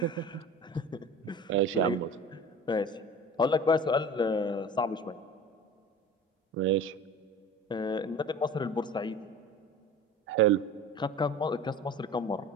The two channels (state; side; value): normal; both; correlation 0.38